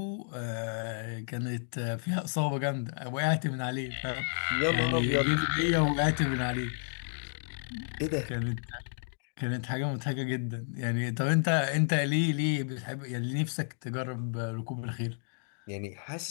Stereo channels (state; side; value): silent; right; digital silence